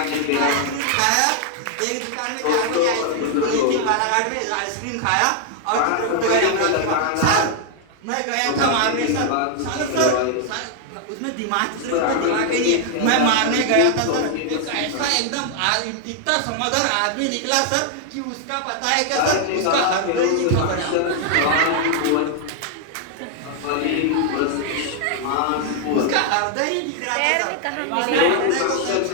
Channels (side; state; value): both; different; correlation 0.00